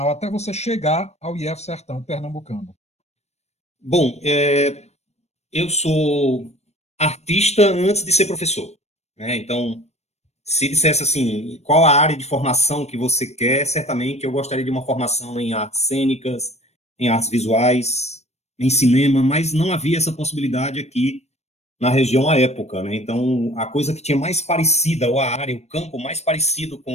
até você chegar ao IF Sertão Pernambucano. Bom, eu sou artista antes de ser professor, né? Então, se dissesse assim, qual a área de formação que você quer, certamente eu gostaria de uma formação em artes cênicas, em artes visuais, em cinema, mas não havia essa possibilidade aqui na região à época, né? Então, a coisa que tinha mais parecida, ou a área, o campo mais parecido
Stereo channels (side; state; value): right; late; 0.31 ms